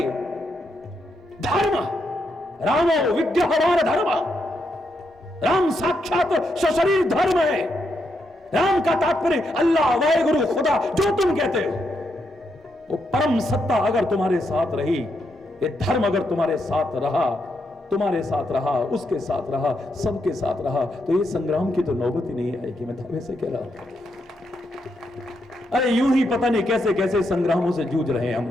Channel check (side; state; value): both; normal; correlation 0.81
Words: धर्म, रामो विग्रहवान धर्म, राम साक्षात सशरीर धर्म है। राम का तात्पर्य अल्लाह, वाहेगुरु, खुदा, जो तुम कहते हो, वो परम सत्ता अगर तुम्हारे साथ रही, ये धर्म अगर तुम्हारे साथ रहा, तुम्हारे साथ रहा, उसके साथ रहा, सबके साथ रहा, तो ये संग्राम की तो नौबत ही नहीं आएगी। मैं दावे से कह रहा हूं। अरे यूं ही पता नहीं कैसे कैसे संग्रामों से जूझ रहे हैं